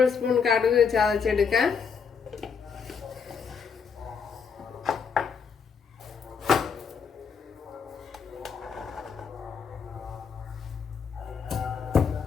സ്പൂൺ കടുക് ചതച്ചെടുക്കാം.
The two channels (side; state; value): right; quieter; 6.1 dB